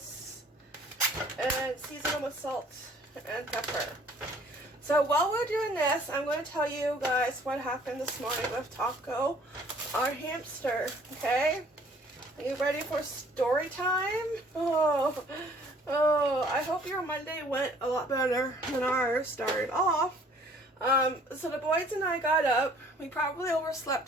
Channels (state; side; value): normal; both; correlation 0.56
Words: And season them with salt and pepper. So while we're doing this, I'm going to tell you guys what happened this morning with Taco, our hamster. Okay? Are you ready for story time? Oh, I hope your Monday went a lot better than ours started off. So the boys and I got up. We probably